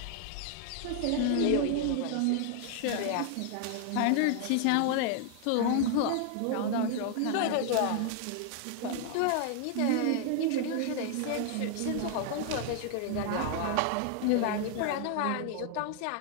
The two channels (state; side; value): different; both; correlation 0.00